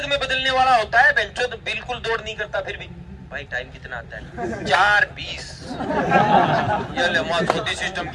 में बदलने वाला होता है। बेंचो तो बिल्कुल दौड़ नहीं करता, फिर भी भाई टाइम कितना आता है? 4:20। ये ले मौत होती सिस्टम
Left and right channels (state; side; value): identical; both; correlation 1.00